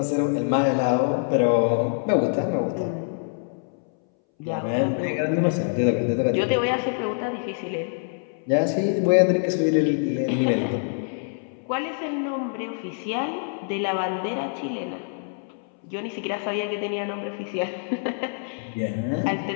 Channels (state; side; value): silent; right; 61 dB below the other